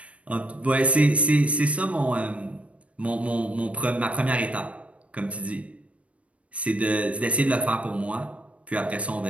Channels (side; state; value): left; late; 0.064 ms